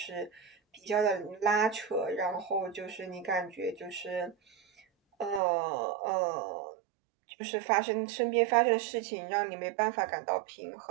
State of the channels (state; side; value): drops out; left; at 5.4 s